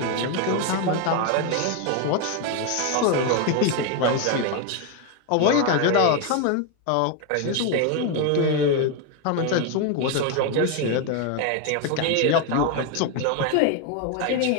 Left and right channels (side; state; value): both; different; correlation 0.01